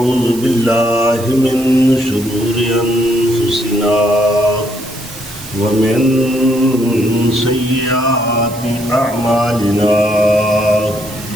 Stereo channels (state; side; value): noise; right; hiss, 17 dB below the sound